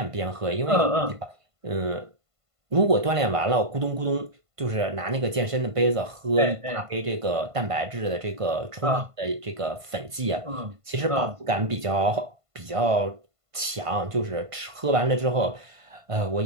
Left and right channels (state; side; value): late; left; 1.5 ms